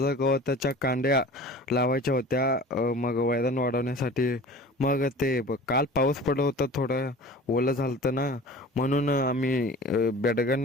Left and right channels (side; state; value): both; normal; correlation 0.40